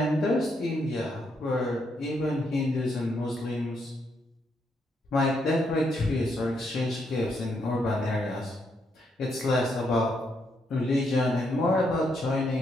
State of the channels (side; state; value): both; normal; correlation 0.77